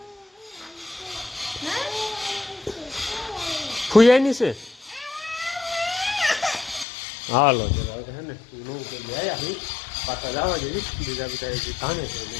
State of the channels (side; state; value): right; drops out; at 6.9 s